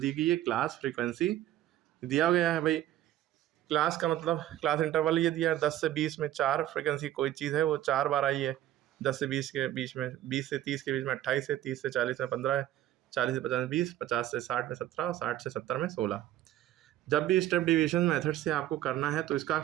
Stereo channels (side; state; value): left; quieter; 13.2 dB